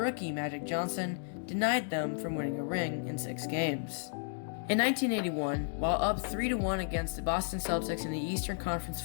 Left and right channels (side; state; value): right; silent; digital silence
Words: Magic Johnson denied them from winning a ring in 6 games. In 1981, while up 3-1 against the Boston Celtics in the Eastern Conference